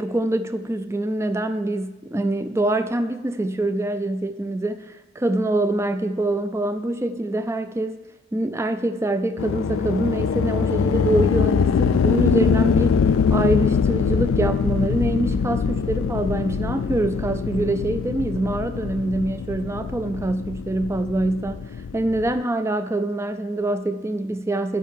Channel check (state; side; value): normal; both; correlation 0.68